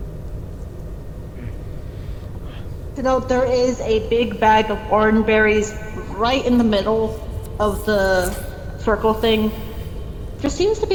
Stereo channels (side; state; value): both; identical; correlation 1.00